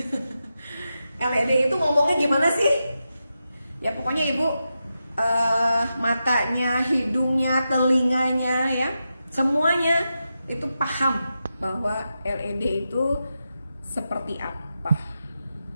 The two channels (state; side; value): inverted; both; correlation -0.89